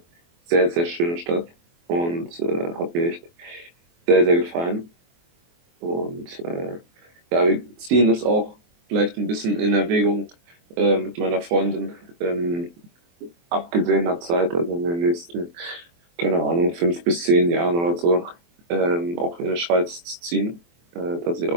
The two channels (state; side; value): late; left; 23 ms